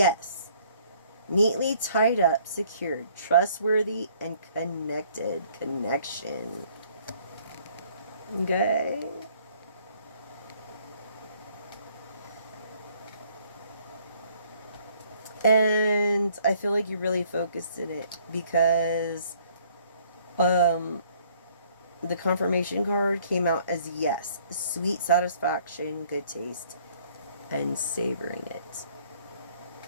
Neatly tied up, secured, trustworthy, and connected. Connection. Okay. And I feel like you really focused in it because the confirmation card came out as yes. Sweet satisfaction, good taste, and savoring it.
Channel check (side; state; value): both; inverted; correlation -0.61